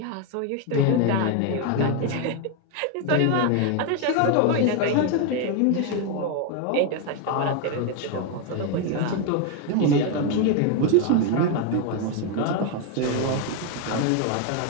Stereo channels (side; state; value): both; different; correlation 0.01